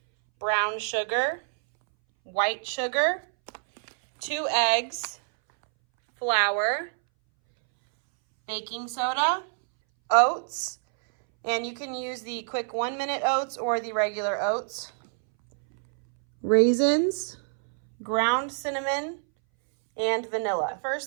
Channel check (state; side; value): silent; left; 61 dB below the other